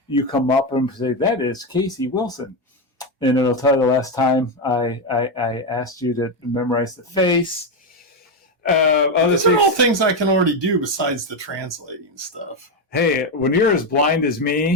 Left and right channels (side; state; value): both; normal; correlation 0.08